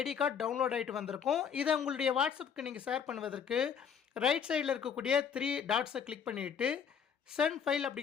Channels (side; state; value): right; quieter; 7.3 dB